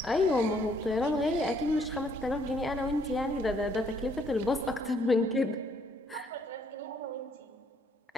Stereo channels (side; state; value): both; normal; correlation 0.67